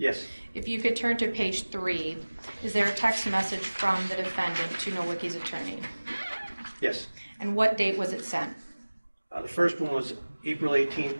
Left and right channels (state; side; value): inverted; both; correlation -1.00